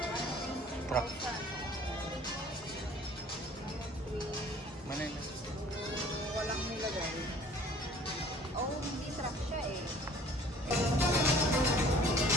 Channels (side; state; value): both; normal; correlation 0.52